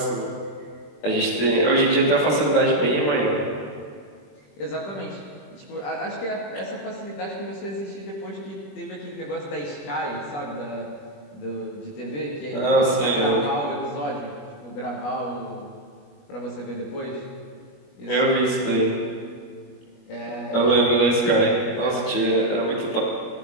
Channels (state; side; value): late; right; 21 ms